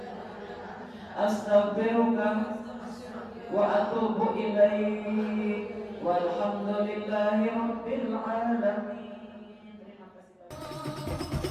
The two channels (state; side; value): identical; both; correlation 1.00